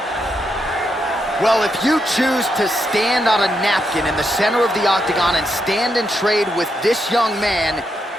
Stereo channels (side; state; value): both; normal; correlation 0.81